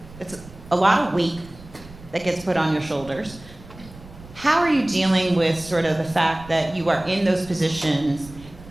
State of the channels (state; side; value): noise; right; rumble, 19 dB below the sound